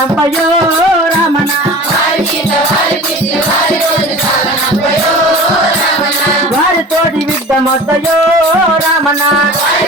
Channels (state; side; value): normal; both; correlation 0.38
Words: రామన వారితోటి విడ్డమొద్దయో రామన